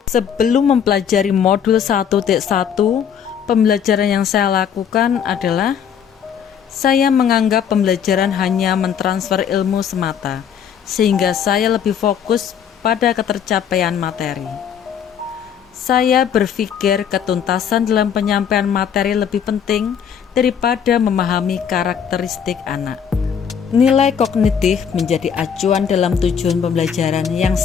Sebelum mempelajari modul 1.1, pembelajaran yang saya lakukan adalah saya menganggap pembelajaran hanya mentransfer ilmu semata, sehingga saya lebih fokus pada ketercapaian materi. Saya berpikir ketuntasan dalam penyampaian materi lebih penting daripada memahami karakteristik anak. Nilai kognitif menjadi acuan dalam tujuan pembelajaran yang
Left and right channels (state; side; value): quieter; right; 7.9 dB